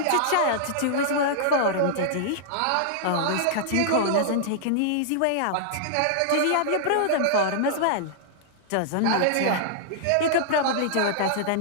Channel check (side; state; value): both; different; correlation -0.01